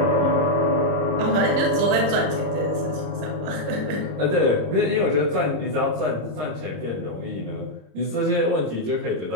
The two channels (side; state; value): left; late; 26 ms